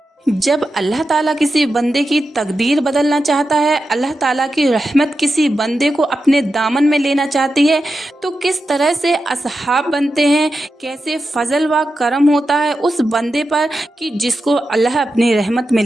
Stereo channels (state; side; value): normal; both; correlation 0.90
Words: जब अल्लाह ताला किसी बंदे की तकदीर बदलना चाहता है, अल्लाह ताला की रहमत किसी बंदे को अपने दामन में लेना चाहती है, तो किस तरह से असहाब बनते हैं, कैसे फजल व करम होता है उस बंदे पर कि जिसको अल्लाह अपनी रहमत में